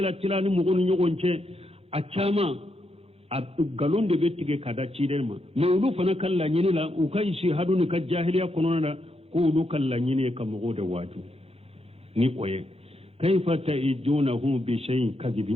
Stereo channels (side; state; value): left; late; 0.29 ms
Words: ni mogonu nyogonche achama galonde betige kada chidenma me ulu fana kala nyini la ukai shi hadu ni ka jahiliya konona ko ulu kala nyini ka mogode waju ni koye kaifa ta'idunahum bi shay'in